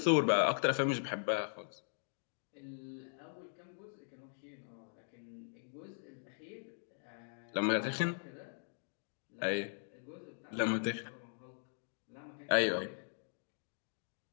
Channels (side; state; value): right; silent; digital silence